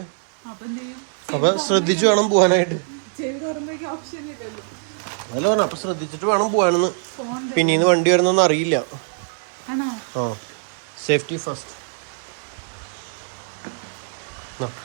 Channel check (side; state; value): left; silent; digital silence